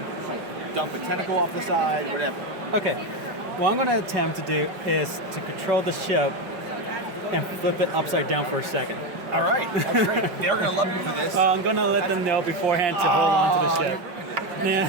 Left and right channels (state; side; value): late; left; 5.2 ms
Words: dump a tentacle off the side, whatever. Okay. What I'm going to attempt to do is to control the ship and flip it upside down for a second. All right, that's great. They're going to love you for this. I'm going to let them know beforehand to hold on to the ship.